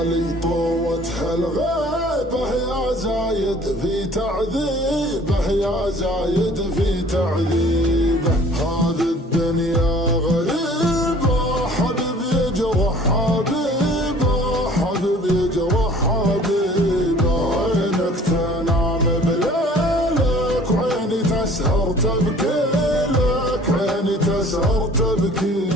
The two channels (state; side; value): normal; both; correlation 0.51